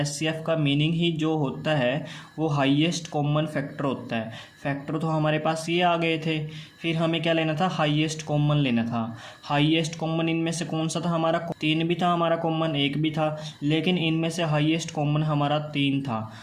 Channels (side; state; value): both; identical; correlation 1.00